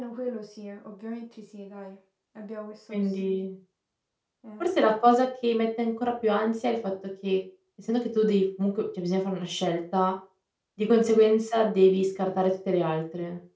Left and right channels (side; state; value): both; identical; correlation 1.00